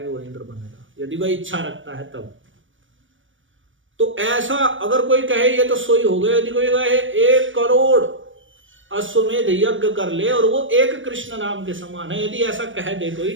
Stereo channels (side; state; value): left; late; 0.56 ms